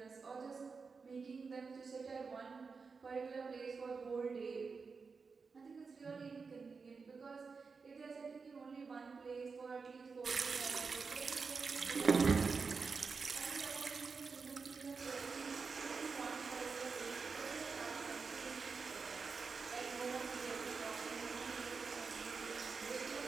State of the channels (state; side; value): quieter; left; 4.9 dB